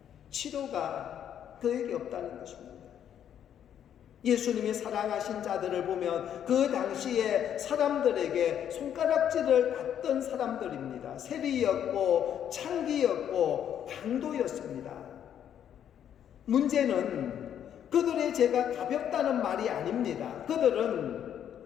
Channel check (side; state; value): right; quieter; 9.6 dB